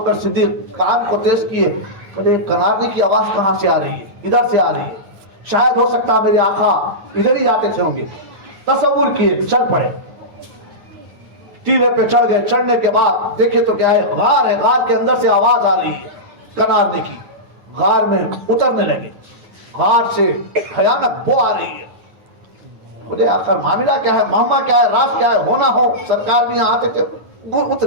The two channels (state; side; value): late; left; 9.0 ms